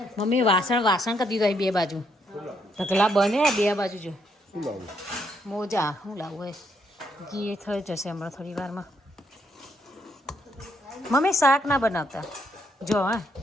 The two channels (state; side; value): normal; both; correlation 0.74